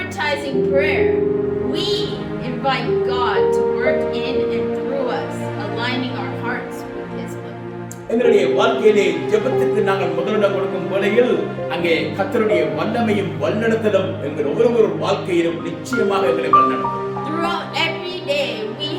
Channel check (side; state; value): both; identical; correlation 1.00